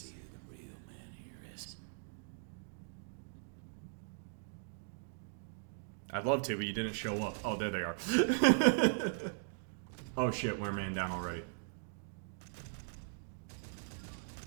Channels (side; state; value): left; silent; digital silence